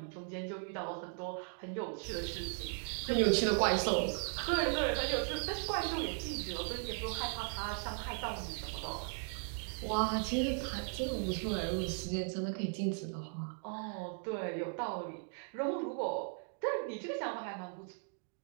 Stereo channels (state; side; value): silent; left; 53 dB below the other